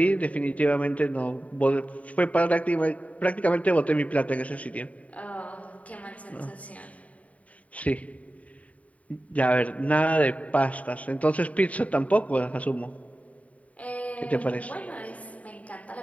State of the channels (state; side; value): late; right; 0.068 ms